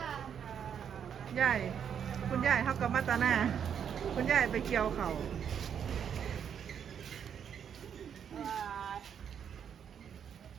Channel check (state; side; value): quieter; left; 8.1 dB